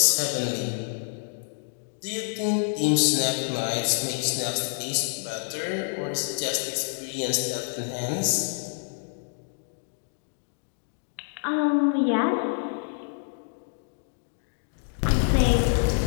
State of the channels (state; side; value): silent; right; digital silence